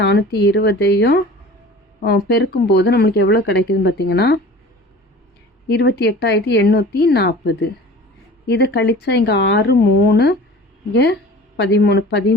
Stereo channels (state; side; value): normal; both; correlation 0.41